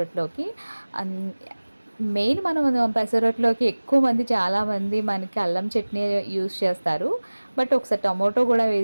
మెయిన్ మనం పెసరట్లోకి ఎక్కువ మంది చాలామంది మనకి అల్లం చట్నీ యూస్ చేస్తారు, బట్ ఒకసారి టమోటో కూడా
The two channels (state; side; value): inverted; both; correlation -1.00